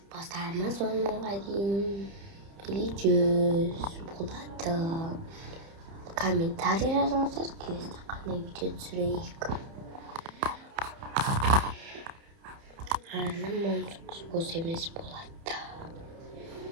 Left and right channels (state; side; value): late; left; 30 ms